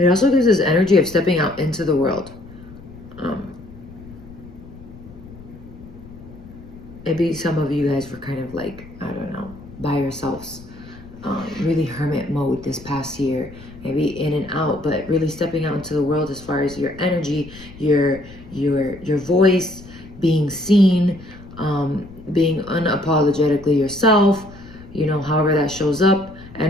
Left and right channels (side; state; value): left; noise; rumble, 18 dB below the sound